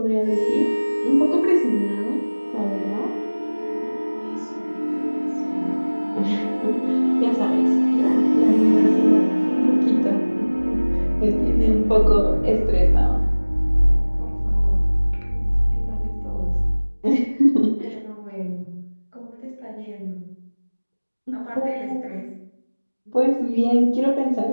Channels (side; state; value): both; inverted; correlation -1.00